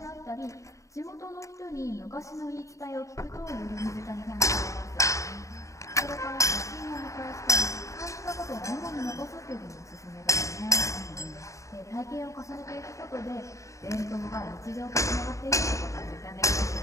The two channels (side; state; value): right; late; 0.15 ms